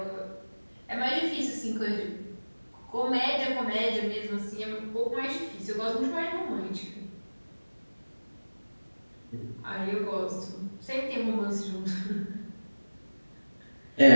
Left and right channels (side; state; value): both; inverted; correlation -1.00